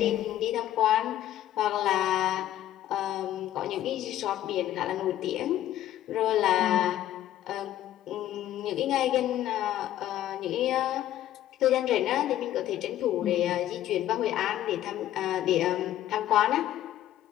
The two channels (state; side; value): quieter; right; 12.8 dB